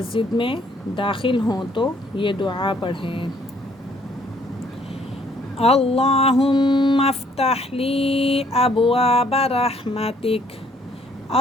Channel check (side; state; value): both; normal; correlation 0.64